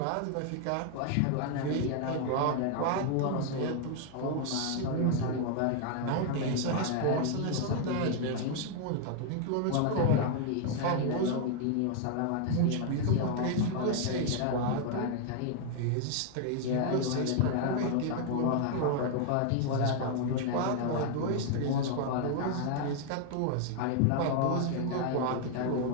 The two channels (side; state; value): both; different; correlation 0.00